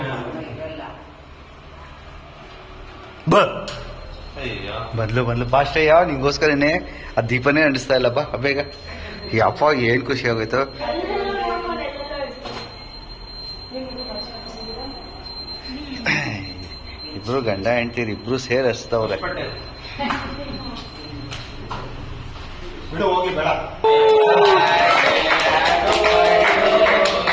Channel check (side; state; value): both; identical; correlation 1.00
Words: ಬಂದ್ಲು ಫಾಸ್ಟ್. ಯಾವ ನಿಂಗೋಸ್ಕರನೇ ಆ ದೀಪನೇ ಅಂಡಿಸ್ತಾ ಇಲ್ಲ. ಬಾ ಬೇಗ. ಯಪ್ಪ, ಏನ್ ಖುಷಿ ಆಗೋಯ್ತು. ಇಬ್ರು ಗಂಡ ಹೆಂಡ್ತೀರಿ ಇಬ್ರು ಸೇರಿ ಹಚ್ತವ್ರೆ. ಹೋಗಿ ಬೇಡ.